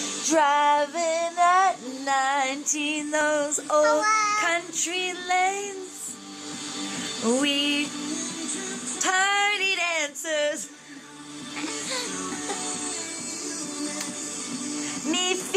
driving at 19, those old country lanes. We party dancers, me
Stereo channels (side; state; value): both; identical; correlation 1.00